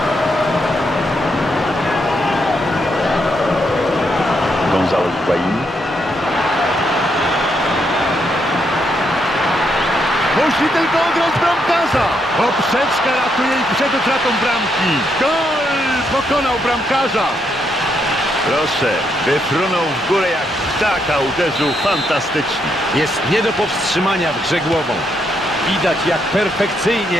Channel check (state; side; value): normal; both; correlation 0.78